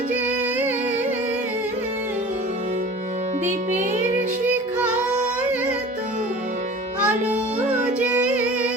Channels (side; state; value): both; normal; correlation 0.41